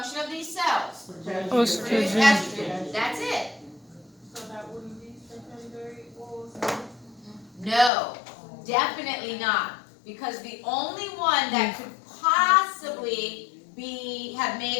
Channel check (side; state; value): right; drops out; at 7.9 s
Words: of these cells? Produce estrogen. That's it. So that wouldn't be secondary oocyte? No, definitely not. Because the only one that could possibly have made